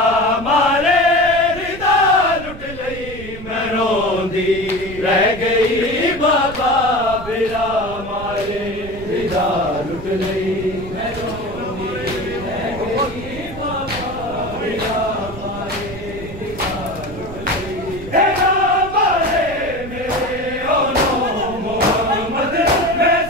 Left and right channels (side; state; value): right; noise; rumble, 13 dB below the sound